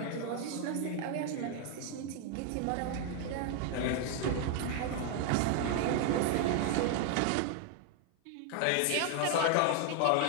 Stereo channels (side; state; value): both; different; correlation 0.00